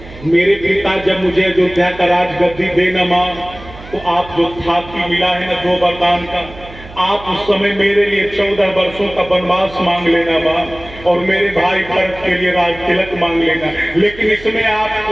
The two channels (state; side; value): noise; right; hum, 17 dB below the sound